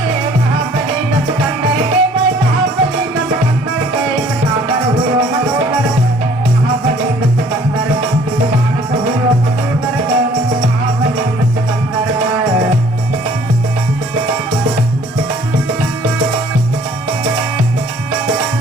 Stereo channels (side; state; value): both; normal; correlation 0.56